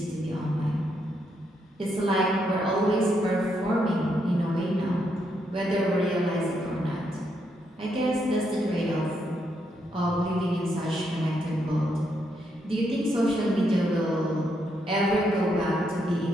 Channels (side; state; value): both; normal; correlation 0.78